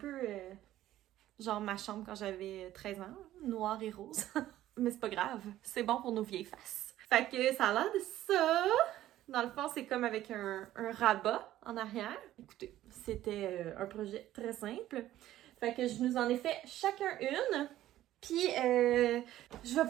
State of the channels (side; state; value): left; quieter; 13.8 dB